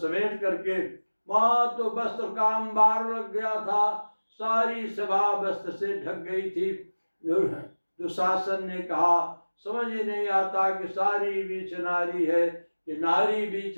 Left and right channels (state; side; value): inverted; both; correlation -1.00